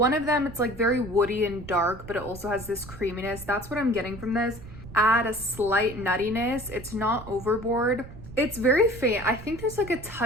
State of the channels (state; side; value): noise; right; rumble, 15 dB below the sound